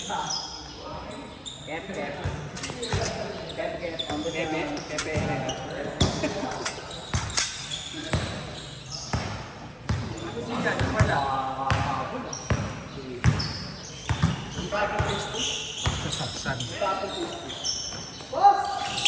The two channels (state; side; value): identical; both; correlation 1.00